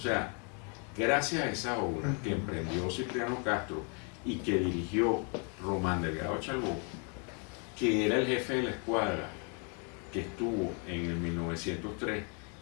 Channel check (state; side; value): quieter; right; 36.5 dB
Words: gracias a esa obra que emprendió Cipriano Castro y que dirigió Román Delgado Chalbó, que era el jefe de la escuadra que estuvo en el 1903